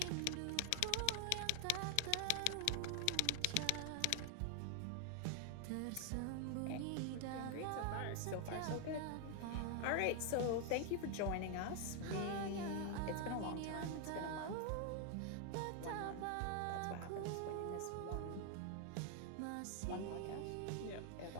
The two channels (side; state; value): both; different; correlation 0.00